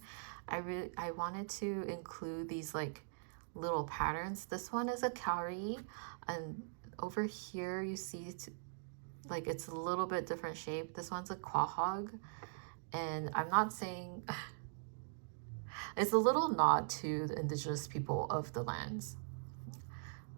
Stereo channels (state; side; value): silent; left; digital silence